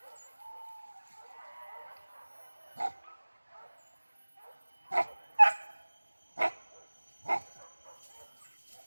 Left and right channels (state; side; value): inverted; both; correlation -1.00